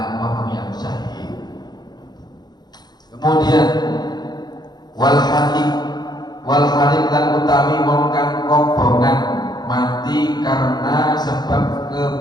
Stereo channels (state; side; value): late; right; 0.20 ms